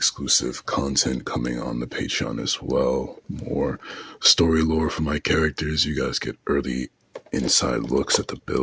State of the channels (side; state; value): both; identical; correlation 1.00